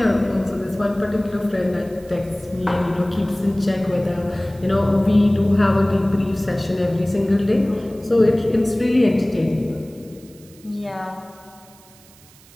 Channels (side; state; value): right; noise; hiss, 26 dB below the sound